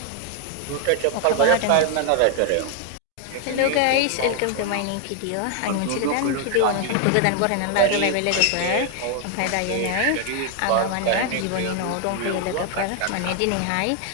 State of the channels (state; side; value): different; both; correlation 0.00